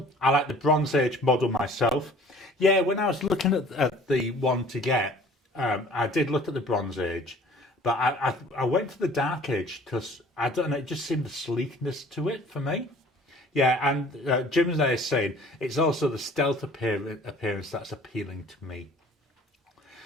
I like the Bronze Age model myself. Yeah, when I was looking at the one to get, I did look at the Bronze Age, but I went for the Dark Age because, I don't know, it just seemed the sleekness to it for me. Yeah, and Jim's there saying it's also the stealth appearance that's appealing to me.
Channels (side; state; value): both; normal; correlation 0.50